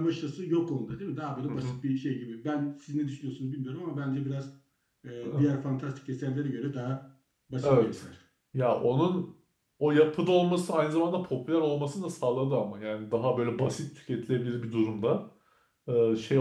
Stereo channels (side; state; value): both; identical; correlation 1.00